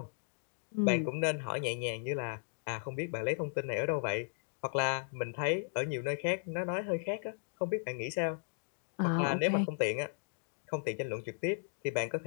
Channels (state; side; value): silent; right; digital silence